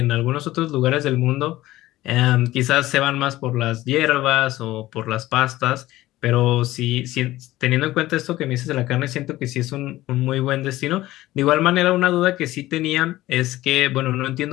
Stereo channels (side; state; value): right; quieter; 16.5 dB